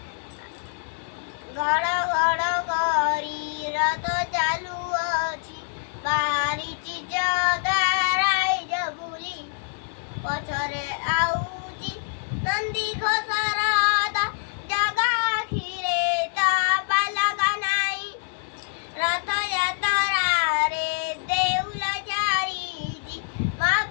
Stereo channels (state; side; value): silent; right; digital silence